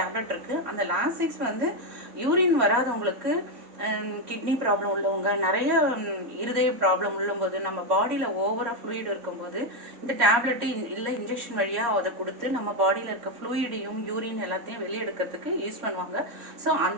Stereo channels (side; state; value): left; late; 3.7 ms